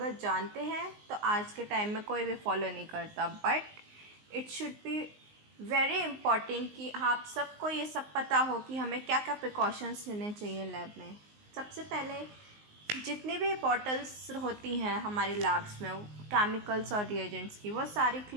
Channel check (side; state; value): left; late; 19 ms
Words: जानते हैं तो आज के टाइम में कोई भी फॉलो नहीं करता, but it should be very important कि आप सबको ये सब पता हो कि हमें क्या क्या प्रिकॉशंस लेने चाहिए लैब में। सबसे पहले जितनी भी बॉटल्स होती हैं हमारे लैब्स में केमिकल्स और रिएजेंट्स की, वो सारी